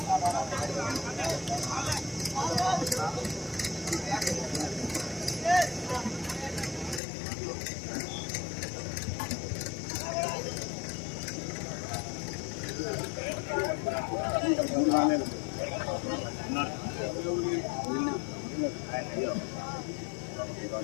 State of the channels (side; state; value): right; drops out; at 7.0 s